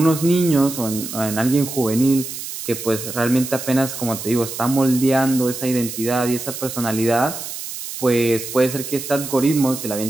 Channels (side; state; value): right; noise; hiss, 8 dB below the sound